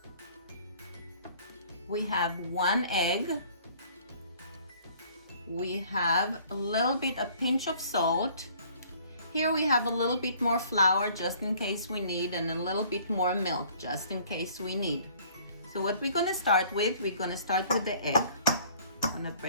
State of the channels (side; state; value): both; inverted; correlation -0.55